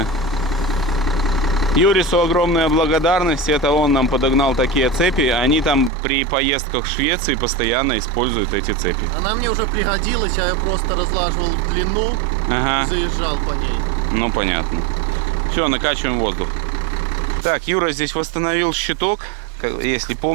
Юрису огромная благодарность, это он нам подогнал такие цепи. Они там при поездках в Швеции постоянно используют эти цепи. Она мне уже пригодилась, я ее просто разлаживал в длину и заезжал по ней. Ну, понятно. Все, накачиваем воздух. Так, Юра здесь восстановил щиток. Если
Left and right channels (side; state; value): left; drops out; at 5.9 s